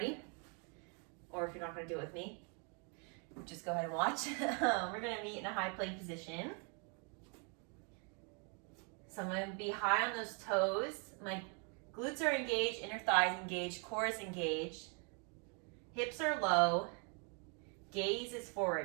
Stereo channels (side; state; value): left; quieter; 37.5 dB